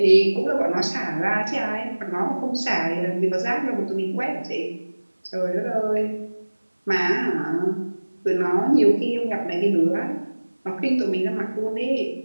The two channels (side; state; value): both; inverted; correlation -1.00